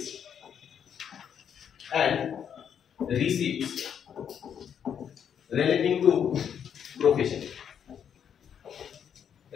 and receipts relating to profession.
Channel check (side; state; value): right; quieter; 8.3 dB